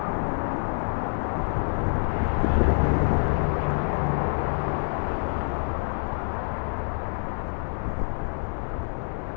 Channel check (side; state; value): right; silent; 58 dB below the other